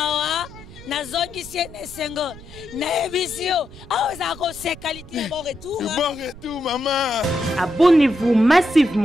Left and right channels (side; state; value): right; noise; rumble, 18 dB below the sound